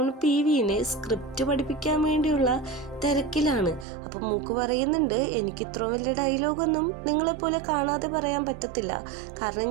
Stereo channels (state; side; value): drops out; left; at 3.9 s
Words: PVനെ സ്ക്രിപ്റ്റ് പഠിപ്പിക്കാൻ വേണ്ടിയുള്ള തിരക്കിലാണ്. അപ്പം മൂക്ക് പറയുന്നുണ്ട്, എനിക്ക് ഇത്ര വലിയ ഡയലോഗൊന്നും നിങ്ങളെപ്പോലെ കാണാതെ പറയാൻ പറ്റത്തില്ല, കാരണം